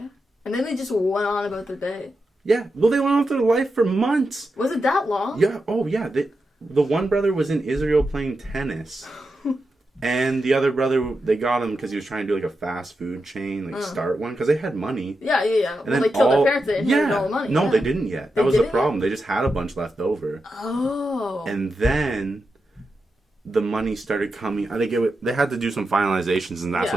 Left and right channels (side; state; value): both; normal; correlation 0.88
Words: Yeah. And then they just went on about their day. Yeah. Well, they went on with their life for months. Was it that long? Yeah. Oh, yeah. The one brother was in Israel playing tennis. And the other brother, they got him because he was trying to do like a fast food chain, like start one, because they had money. Yeah. And then they killed their parents, they inherited all the money. No, they didn't yet. That was the problem. They just had a bunch left over. Oh. And then the money started coming. I think they had to do some finalizations, and that's